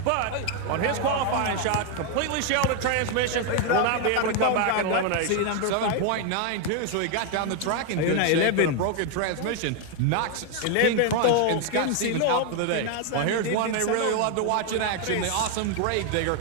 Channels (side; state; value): both; different; correlation 0.01